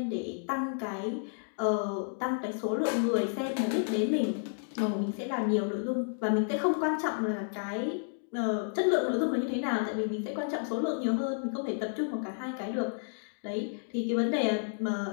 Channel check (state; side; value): silent; right; digital silence